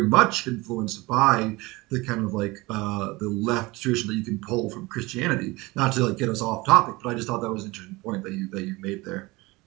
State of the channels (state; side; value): quieter; left; 22.3 dB